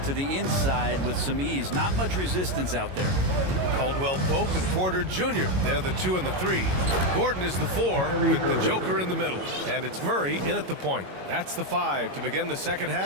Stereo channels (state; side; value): late; left; 22 ms